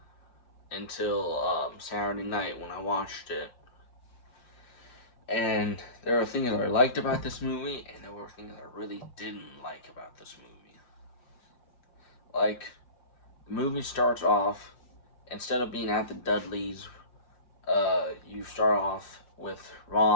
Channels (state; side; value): late; right; 5.7 ms